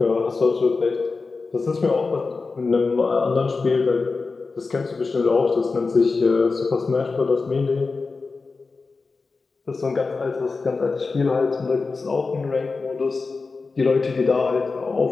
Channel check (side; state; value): right; quieter; 4.2 dB